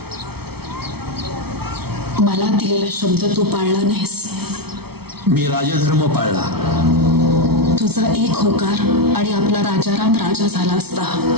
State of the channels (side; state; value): left; late; 0.96 ms